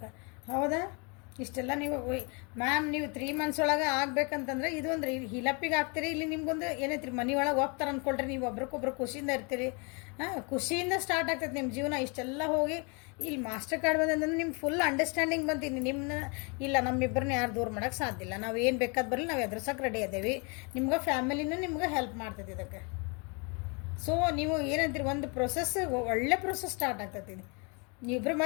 ಹೌದಾ? ಇಷ್ಟೆಲ್ಲ ನೀವು ಮ್ಯಾಮ್ ನೀವು 3 ಮಂತ್ಸ್ ಒಳಗೆ ಆಗ್ಬೇಕಂತಂದ್ರೆ ಇದು ಒಂದು ಹಿಲಪ್ಪಿಗೆ ಆಗ್ತೀರಿ. ಇಲ್ಲಿ ನಿಮ್ಗೊಂದು ಏನೈತ್ರಿ, ಮನೆ ಒಳಗೆ ಹೋಗ್ತಾರೆ ಅಂದ್ಕೊಳ್ರಿ, ನೀವು ಒಬ್ರಿಗೊಬ್ರು ಖುಷಿಯಿಂದ ಇರ್ತೀರಿ. ಖುಷಿಯಿಂದ ಸ್ಟಾರ್ಟ್ ಆಗ್ತೈತೆ ನಿಮ್ಮ ಜೀವನ. ಇಷ್ಟೆಲ್ಲ ಹೋಗಿ ಇಲ್ಲಿ ಮಾಸ್ಟರ್ ಕಾರ್ಡ್ ಬಂದಂದ್ರೆ ನಿಮ್ಗೆ ಫುಲ್ ಅಂಡರ್ಸ್ಟ್ಯಾಂಡಿಂಗ್ ಬಂತೀನಿ. ನಿಮ್ಮನ್ನ ಇಲ್ಲ, ನಮ್ಮಿಬ್ಬರನ್ನ ಯಾರು ದೂರ ಮಾಡೋಕ್ಕೆ ಸಾಧ್ಯ ಇಲ್ಲ. ನಾವು ಏನು ಬೇಕಾದ ಬರಲಿ, ನಾವು ಎದುರ್ಸೋಕೆ ರೆಡಿ ಅದೇವಿ. ನಿಮ್ಗೆ ಫ್ಯಾಮಿಲಿನೂ ನಿಮ್ಗೆ ಹೆಲ್ಪ್ ಮಾಡ್ತೈತಿ ಇದಕ್ಕೆ. ಸೊ ನೀವು ಏನಂತೀರಿ, ಒಂದು ಪ್ರೊಸೆಸ್, ಒಳ್ಳೆ ಪ್ರೊಸೆಸ್ ಸ್ಟಾರ್ಟ್ ಆಗ್ತೈತಿ. ನೀವಿಬ್ಬರು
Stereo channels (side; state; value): right; quieter; 33.0 dB